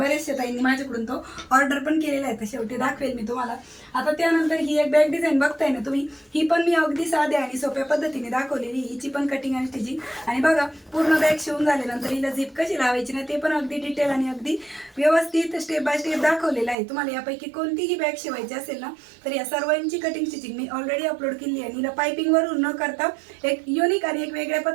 ताईंनी माझ्याकडून तो ऑर्डर पण केलेला आहे। तर शेवटी दाखवेल मी तुम्हाला। आता त्यानंतर ही एक बॅग डिझाईन बघताय ना तुम्ही, ही पण मी अगदी साध्या आणि सोप्या पद्धतीने दाखवलेली, हिची पण कटिंग आणि स्टिचिंग। आणि बघा पूर्ण बॅग शिवून झाल्यानंतर हिला झिप कशी लावायची ना ते पण अगदी डिटेल आणि अगदी व्यवस्थित स्टेप बाय स्टेप दाखवलेलं आहे। तुम्हाला यापैकी कोणतीही बॅग शिवायची असेल ना तर या सर्वांची कटिंग स्टिचिंग मी ऑलरेडी अपलोड केली आहे। हिला पायपिंगवरून न करता एक युनिक आणि एक वेगळ्या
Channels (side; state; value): left; drops out; at 16.8 s